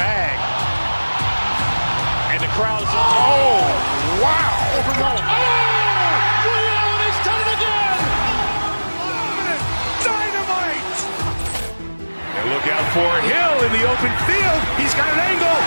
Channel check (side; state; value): both; inverted; correlation -1.00